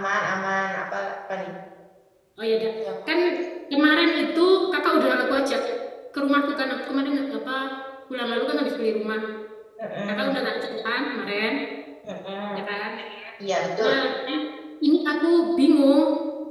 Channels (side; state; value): both; identical; correlation 1.00